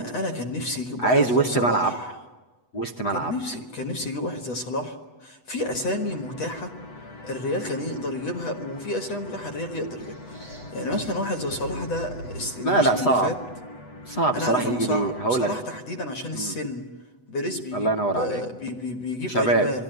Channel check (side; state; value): right; late; 8.1 ms